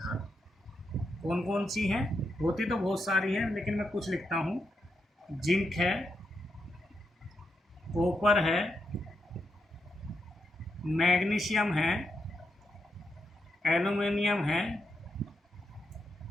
कौन कौन सी हैं, होती तो बहुत सारी हैं, लेकिन मैं कुछ लिखता हूँ। जिंक है, कॉपर है, मैग्नीशियम है, एल्युमिनियम है,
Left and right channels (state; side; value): normal; both; correlation 0.83